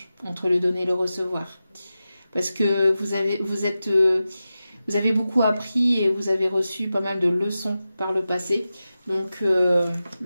entre le donner et le recevoir. Parce que vous avez beaucoup appris et vous avez reçu pas mal de leçons par le passé. Donc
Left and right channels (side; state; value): both; inverted; correlation -0.93